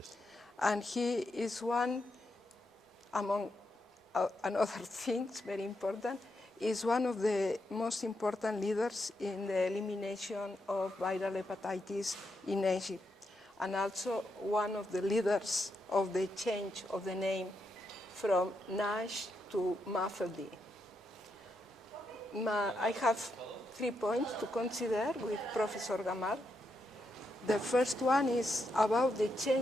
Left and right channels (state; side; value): normal; both; correlation 0.82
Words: And he is one, among other things, very important, is one of the most important leaders in the elimination of viral hepatitis in Egypt, and also one of the leaders of the change of the name from NASH to MAFLD. I have 3 points to consider with Professor Gamal. The first one is about the